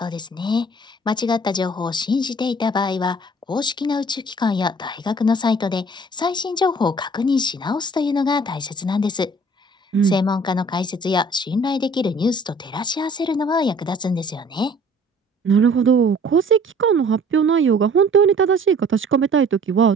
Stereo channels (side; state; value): both; normal; correlation 0.53